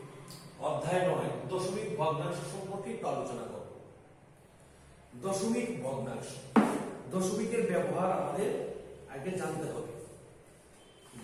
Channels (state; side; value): identical; both; correlation 1.00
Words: অধ্যায় 9 দশমিক ভগ্নাংশ সম্পর্কে একটু আলোচনা করব। দশমিক ভগ্নাংশ, দশমিকের ব্যবহার আমাদের আগে জানতে হবে।